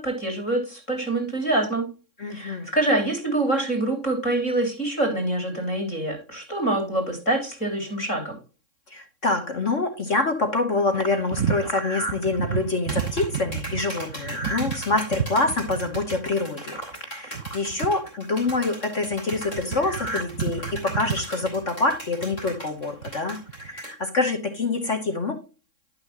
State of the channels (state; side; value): late; right; 3.6 ms